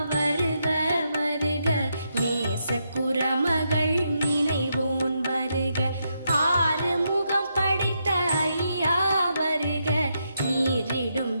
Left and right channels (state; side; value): inverted; both; correlation -0.81